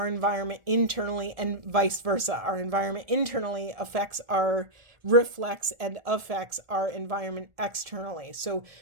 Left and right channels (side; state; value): left; late; 1.4 ms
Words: environment internally, and vice versa. Our environment internally reflects and affects our environment externally. So